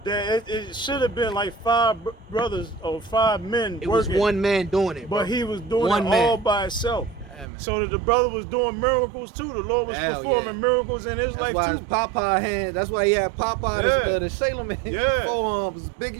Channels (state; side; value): drops out; left; at 7.5 s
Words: that it should have been like 5 brothers or 5 men It was working. one man doing it, bro. But he was doing One it man. all by himself. Yeah, man. So that the brother was doing miracles too. The Lord was Hell performing yeah. miracles in his That's life why his too. Popeye hand. That's why he had Popeye, Yeah. the Sailor Man. Yeah. Forearms was big